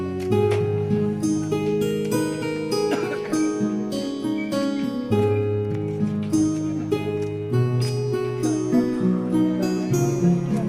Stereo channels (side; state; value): both; identical; correlation 1.00